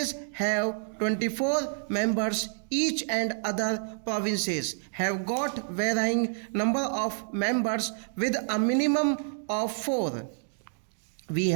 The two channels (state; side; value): silent; left; digital silence